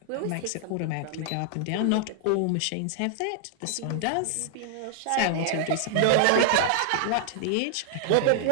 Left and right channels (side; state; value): both; different; correlation 0.00